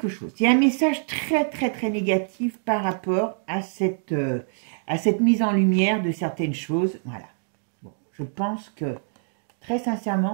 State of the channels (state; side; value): silent; left; digital silence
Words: chose. Il y a un message très, très, très négatif par rapport à cette mise en lumière de certaines choses, voilà. Bon, je pense que très